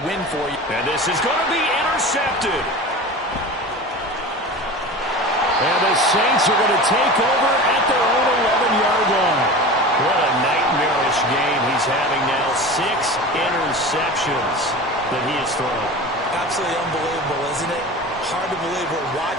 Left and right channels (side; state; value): both; normal; correlation 0.33